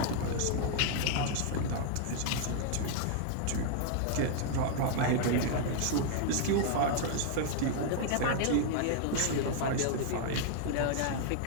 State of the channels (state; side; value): different; both; correlation -0.01